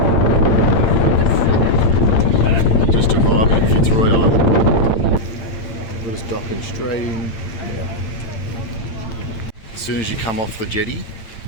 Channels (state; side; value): late; right; 8.8 ms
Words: Just arrived at Fitzroy Island. We're just docking straight in. Yeah. As soon as you come off the jetty,